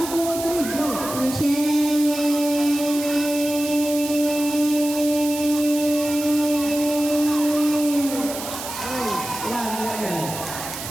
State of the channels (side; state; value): right; noise; hiss, 9 dB below the sound